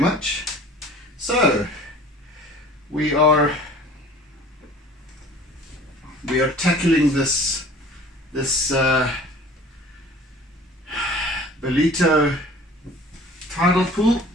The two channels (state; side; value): normal; both; correlation 0.47